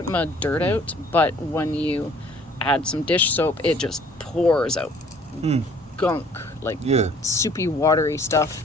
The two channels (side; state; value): both; normal; correlation 0.56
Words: amount of dirt out. But when you add some dish soap, it just pours out gunk, like soupy, watery stuff.